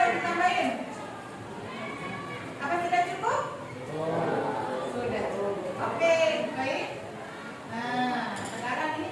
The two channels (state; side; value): identical; both; correlation 1.00